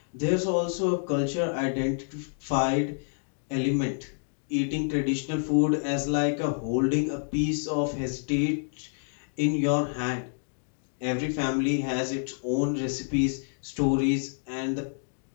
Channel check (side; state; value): right; silent; digital silence